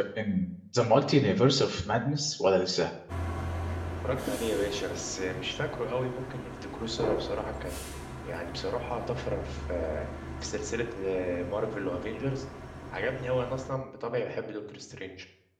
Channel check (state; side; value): identical; both; correlation 1.00